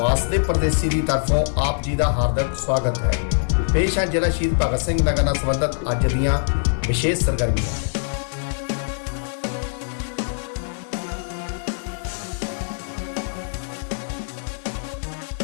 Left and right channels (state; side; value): silent; right; digital silence